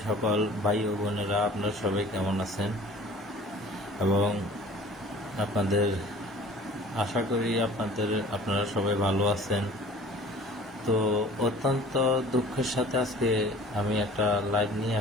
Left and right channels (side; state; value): both; normal; correlation 0.46